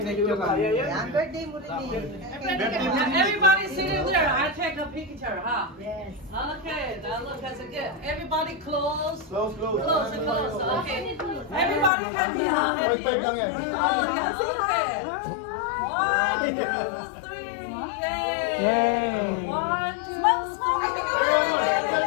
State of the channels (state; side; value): drops out; right; at 11.9 s